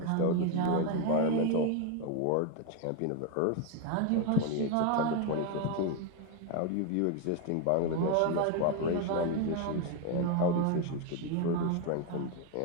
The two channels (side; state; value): both; different; correlation 0.02